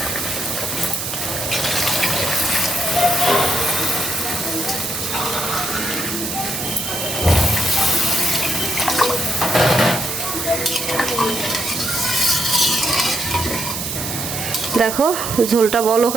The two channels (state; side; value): noise; right; hiss, 4 dB below the sound